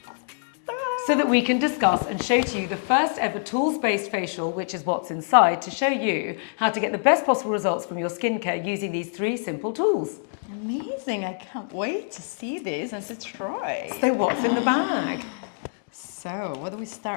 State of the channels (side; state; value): right; silent; digital silence